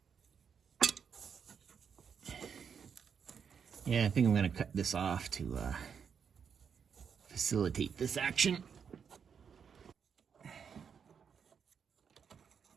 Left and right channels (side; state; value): left; quieter; 6.9 dB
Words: Yeah, I think I'm going to cut this off to facilitate this action.